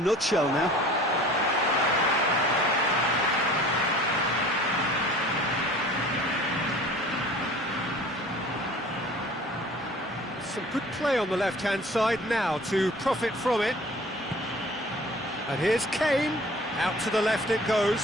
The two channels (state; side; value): normal; both; correlation 0.46